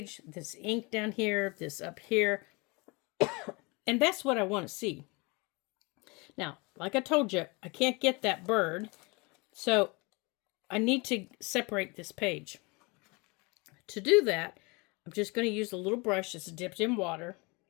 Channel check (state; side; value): quieter; right; 27.8 dB